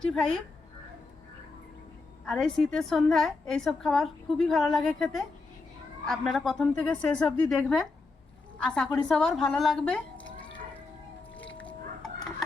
আর এই শীতের সন্ধ্যায় এইসব খাবার খুবই ভালো লাগে খেতে। আপনারা প্রথম থেকে শেষ অবধি দেখবেন, আশা করি সবার ভালো লাগবে।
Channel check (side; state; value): right; quieter; 3.7 dB